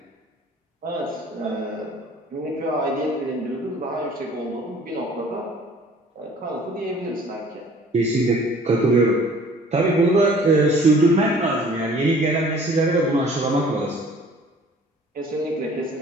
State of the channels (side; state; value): both; normal; correlation 0.52